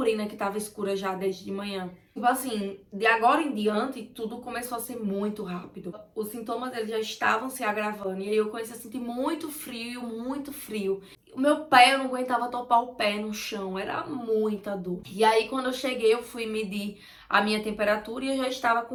que tava escura já desde de manhã. Tipo assim, de agora em diante, tudo começou a ser muito rápido. Os sintomas eles já estavam se agravando, e aí eu comecei a sentir muito frio, muito frio. O meu pé, eu não aguentava topar o pé no chão, era muita dor. E aí quando eu cheguei, eu fui medir a minha temperatura e eu já estava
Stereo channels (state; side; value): identical; both; correlation 1.00